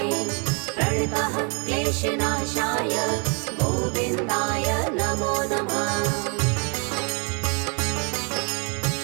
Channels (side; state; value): left; quieter; 35.4 dB